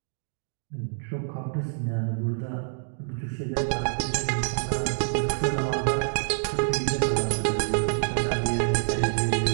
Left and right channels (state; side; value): silent; left; digital silence